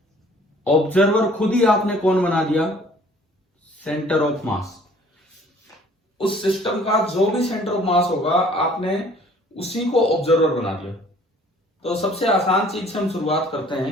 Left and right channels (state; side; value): normal; both; correlation 0.55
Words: ऑब्जर्वर खुद ही आपने कौन बना दिया? सेंटर ऑफ मास। उस सिस्टम का जो भी सेंटर ऑफ मास होगा आपने उसी को ऑब्जर्वर बना दिया। तो सबसे आसान चीज से हम शुरुआत करते